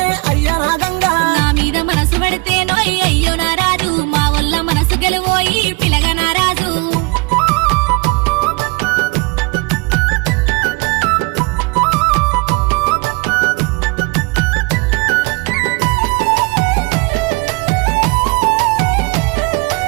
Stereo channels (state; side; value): quieter; left; 27.6 dB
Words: అయ్యో నా గంగా. నా మీద మనసు పడితే నోయ్ అయ్యో నా రాజు, మా వల్ల మనసు గెలువోయి పిలగ నా రాజు.